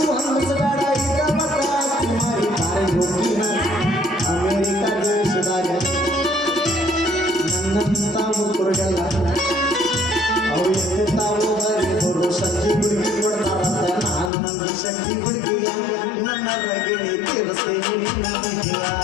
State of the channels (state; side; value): drops out; right; at 14.3 s